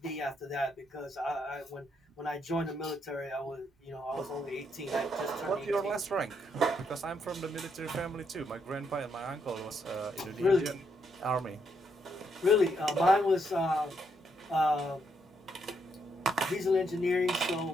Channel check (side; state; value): both; normal; correlation 0.76